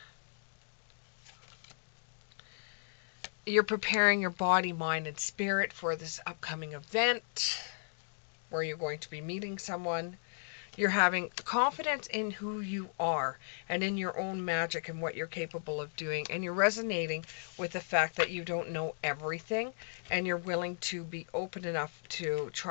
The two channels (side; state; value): right; silent; digital silence